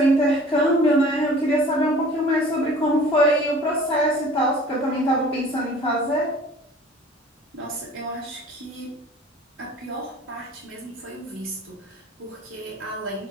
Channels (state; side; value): normal; both; correlation 0.46